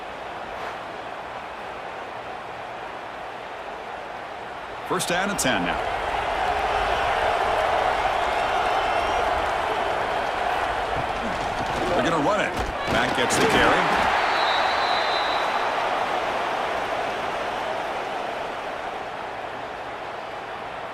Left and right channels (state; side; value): identical; both; correlation 1.00